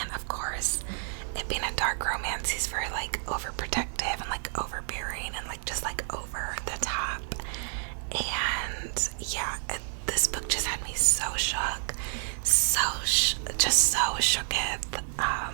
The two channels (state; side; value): silent; left; digital silence